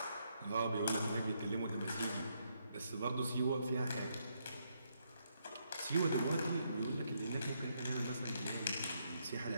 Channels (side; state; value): both; inverted; correlation -0.76